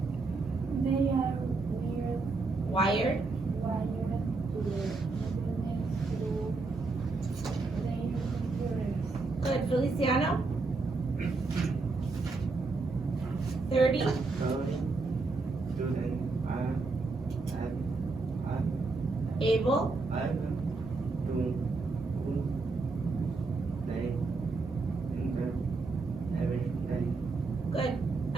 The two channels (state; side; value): quieter; left; 3.8 dB